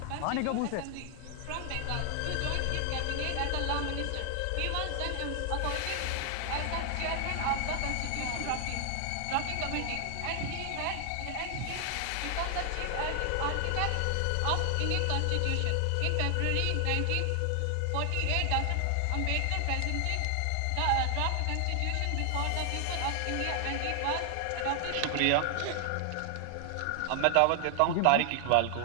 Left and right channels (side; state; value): both; different; correlation 0.00